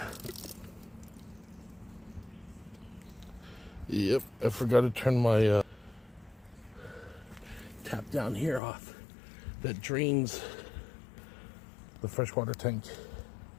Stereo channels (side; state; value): right; drops out; at 8.6 s